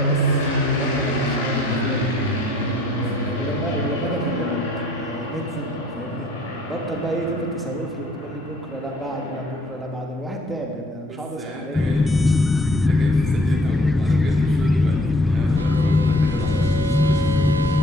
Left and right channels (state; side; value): normal; both; correlation 0.59